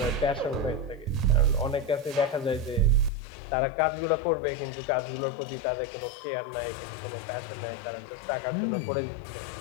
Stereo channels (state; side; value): drops out; right; at 3.1 s